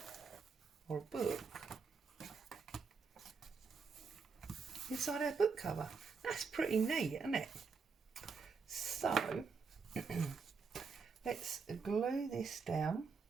or a book inside our book cover. That's pretty neat, isn't it? So let's glue this down.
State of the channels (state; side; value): quieter; left; 5.1 dB